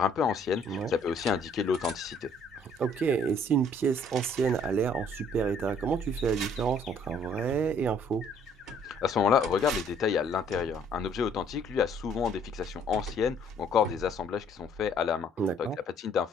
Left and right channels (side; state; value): both; normal; correlation 0.61